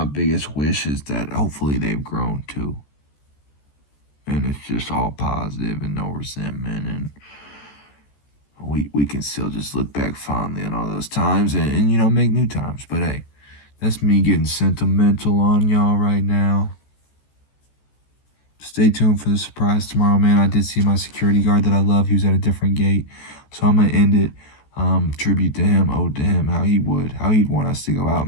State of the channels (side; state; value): right; late; 14 ms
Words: biggest wish is that hopefully they've grown too. And it's just all positive and no resentment, and we can still just look back fondly on all those times, and make new times. But hey, that's me getting sentimental on y'all right now. Stay tuned for the surprise tomorrow, man. I did see my security guard that I love. He was at a different gate, so I'm gonna end it. Tribute to him, ode to him, how he'd want us to go